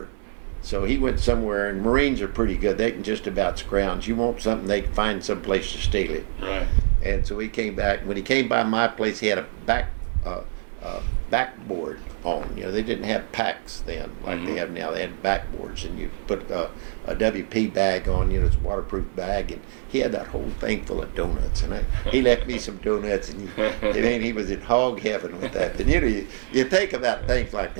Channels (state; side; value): silent; left; digital silence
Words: So he went somewhere, and Marines are pretty good. They can just about scrounge. You want something, they can find some place to steal it. Right. And so he came back. When he came by my place, he had a backboard on. They didn't have packs then like they have now. They had backboards, and you put a WP bag on. It's a waterproof bag, and he had that whole thing full of donuts. And he left me some donuts, and he was in hog heaven with that. And you think about things like